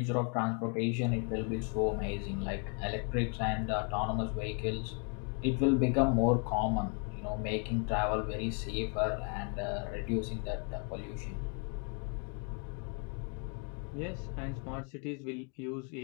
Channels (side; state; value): right; quieter; 37.9 dB